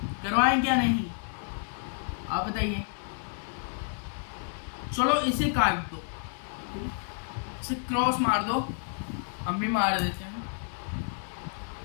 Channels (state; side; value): silent; right; 57 dB below the other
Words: करवाएं क्या नहीं, आप बताइए। चलो इसे काट दो, इसे क्रॉस मार दो, हम भी मार देते हैं,